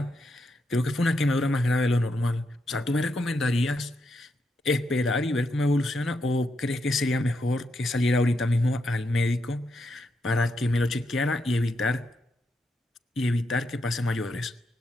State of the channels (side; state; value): both; normal; correlation 0.82